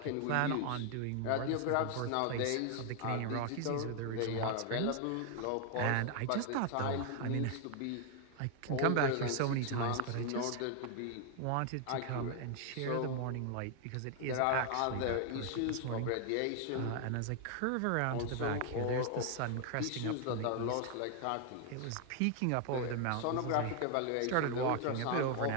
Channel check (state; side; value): different; both; correlation 0.00